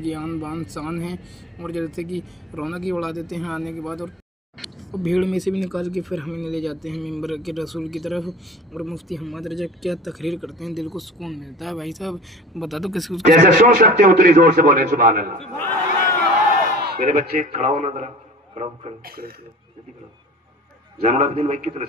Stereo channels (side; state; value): both; normal; correlation 0.40